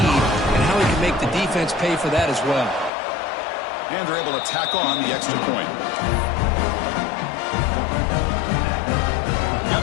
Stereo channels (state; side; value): drops out; right; at 2.9 s